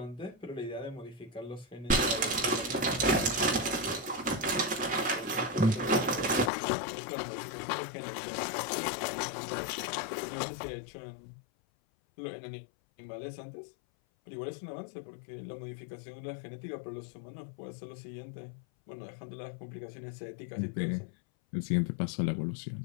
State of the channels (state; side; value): drops out; right; at 6.5 s